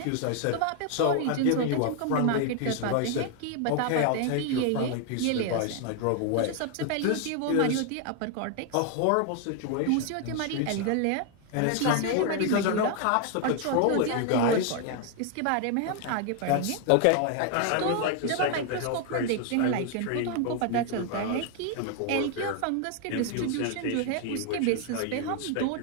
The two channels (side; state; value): both; different; correlation 0.00